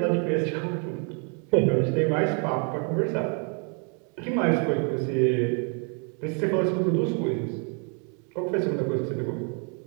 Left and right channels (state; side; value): quieter; left; 39.1 dB